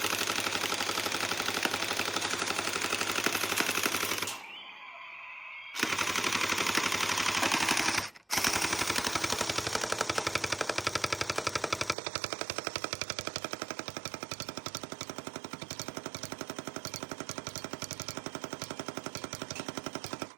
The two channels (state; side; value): drops out; left; at 12.0 s